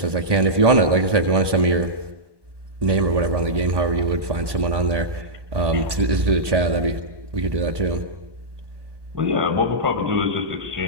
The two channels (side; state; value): left; late; 1.8 ms